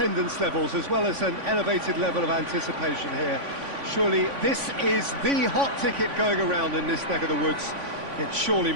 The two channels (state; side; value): late; left; 3.5 ms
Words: levels as well as an elevated level of anticipation here. Surely this is the hot ticket going around in this neck of the woods. It surely